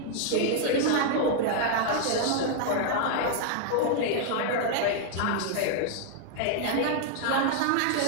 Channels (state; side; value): different; both; correlation 0.00